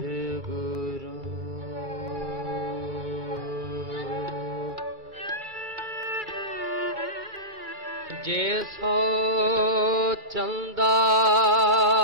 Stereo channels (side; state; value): both; normal; correlation -0.16